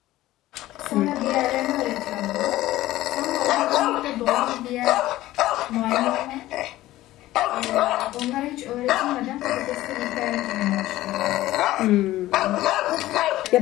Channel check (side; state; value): right; quieter; 15.9 dB